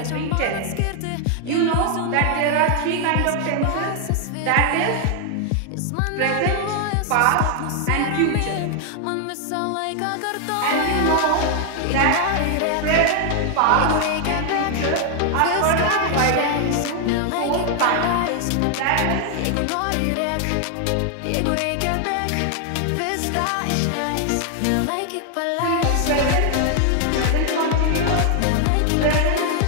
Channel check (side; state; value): both; different; correlation 0.00